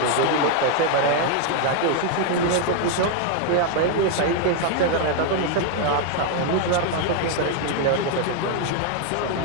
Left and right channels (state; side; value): different; both; correlation 0.01